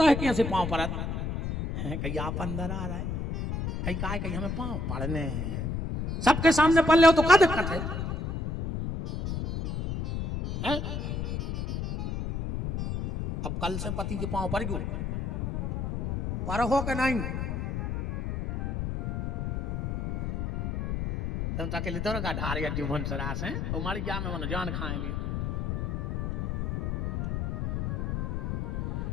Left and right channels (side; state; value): left; noise; rumble, 2 dB below the sound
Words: है कैसे पांव पड़त है, कहीं आप अंदर आ रहा है, कहीं काय कहीं हमें पांव पड़ने हैं, सबके सामने पल ले हो तो क्या दिक्कत है? अब कल से पति के पांव पर क्यों पर हो के नहीं, तुम तक लिए तो का ढार या जीवन सरास है, हमारी क्या में मन जान खाएंगे।